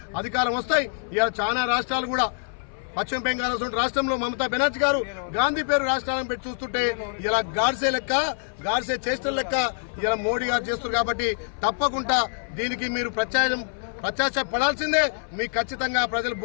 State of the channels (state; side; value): silent; right; 59 dB below the other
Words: అధికారం వస్తాయి. ఇలా చాలా రాష్ట్రాలు కూడా పశ్చిమ బెంగాల్ రాష్ట్రంలో మమతా బెనర్జీ గారు గాంధీ పేరు రాష్ట్రాలను పెట్టి చూస్తుంటే ఇలా గాడ్సే చేష్టల లెక్క ఇలా మోడీ గారు చేస్తున్నారు. కాబట్టి తప్పకుండా దీనికి మీరు ప్రత్యాశపడాల్సిందే. మీకు ఖచ్చితంగా ప్రజలు